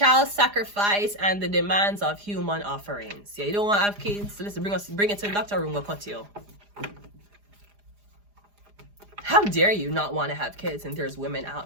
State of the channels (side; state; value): left; late; 4.9 ms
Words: sacrifice and the demands of human offerings. Yeah, you don't want to have kids, so let's bring it to the doctor room, we'll cut you. How dare you not want to have kids, and there's women